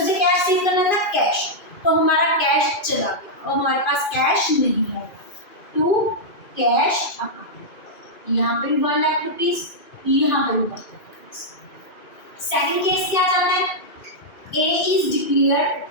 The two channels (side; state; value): right; late; 2.5 ms